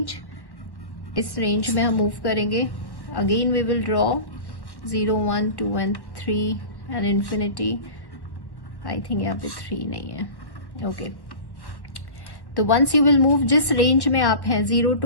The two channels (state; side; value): late; right; 1.1 ms